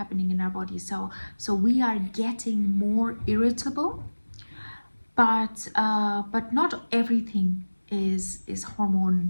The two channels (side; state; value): both; inverted; correlation -1.00